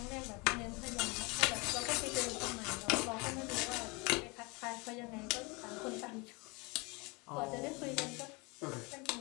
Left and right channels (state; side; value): quieter; right; 27.8 dB